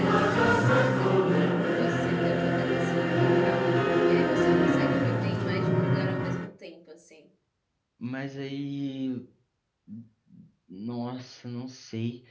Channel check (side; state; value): both; identical; correlation 1.00